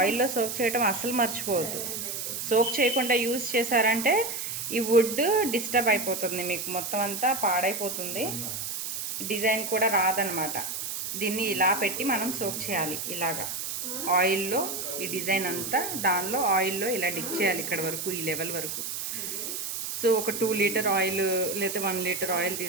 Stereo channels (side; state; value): right; noise; hiss, 4 dB below the sound